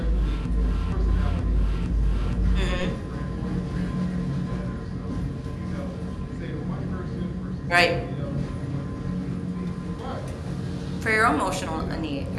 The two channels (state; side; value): identical; both; correlation 1.00